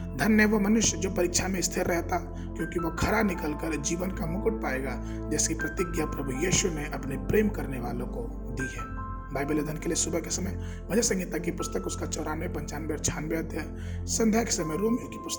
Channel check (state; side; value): identical; both; correlation 1.00